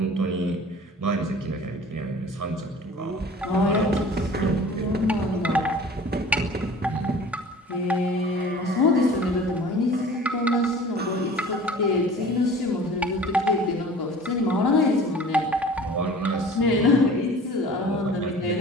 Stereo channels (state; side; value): normal; both; correlation 0.44